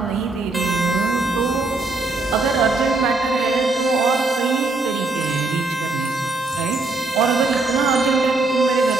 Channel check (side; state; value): left; quieter; 3.4 dB